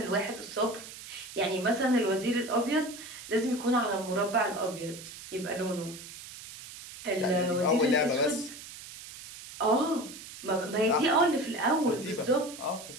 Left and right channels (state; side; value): noise; right; hiss, 14 dB below the sound